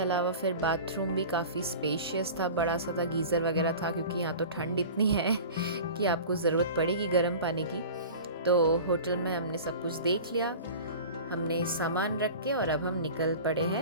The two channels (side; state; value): both; inverted; correlation -0.37